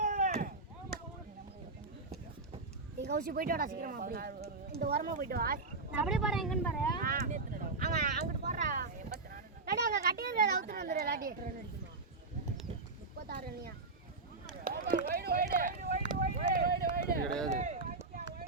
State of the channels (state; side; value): quieter; left; 3.6 dB